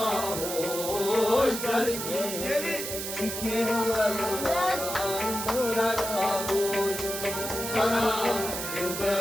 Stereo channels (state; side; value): noise; right; hiss, 5 dB below the sound